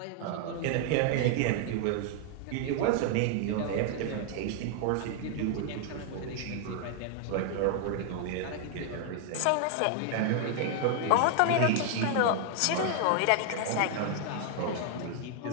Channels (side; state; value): both; different; correlation 0.00